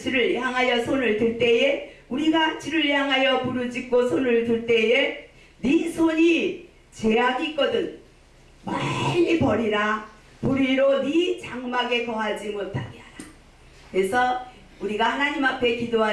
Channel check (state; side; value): identical; both; correlation 1.00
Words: 향하여 손을 들 때에, 우리가 주를 향하여 부르짖고 손을 들 때에 네 손이 죄악이 있거든 멀리 버리라. 불의로 네 장막에 거하지 못하게 하라. 그래서 우리가 하나님 앞에